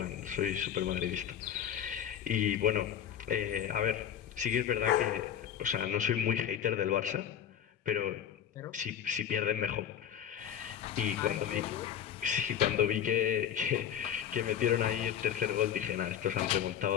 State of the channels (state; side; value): quieter; right; 9.5 dB